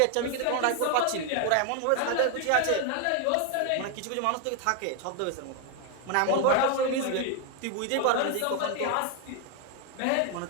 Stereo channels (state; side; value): different; both; correlation 0.01